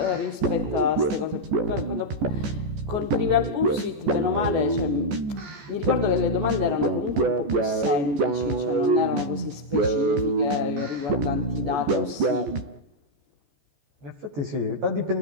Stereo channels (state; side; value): late; left; 14 ms